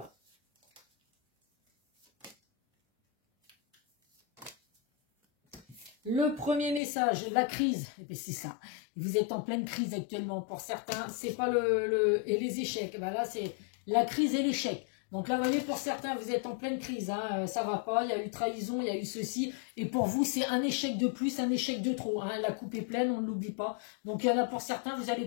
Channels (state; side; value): drops out; right; at 6.8 s